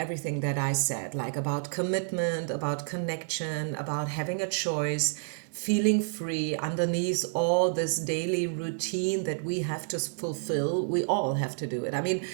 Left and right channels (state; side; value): silent; left; digital silence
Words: that I said, like about commitment, about connection, about having a choice, feeling free underneath all this daily routine that we have to fulfill. We all have to do it. I mean,